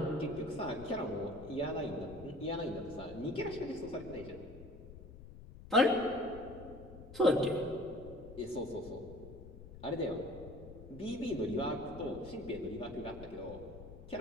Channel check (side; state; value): left; noise; rumble, 14 dB below the sound